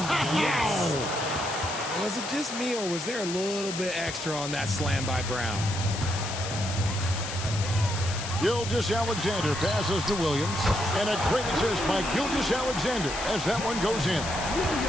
yes! Was it just me, or was there a little bit extra on that slam by Brown? Gilgeous-Alexander passes to Williams. And a great assist by Gilgeous-Alexander as that one goes in.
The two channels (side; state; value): left; noise; hiss, 7 dB below the sound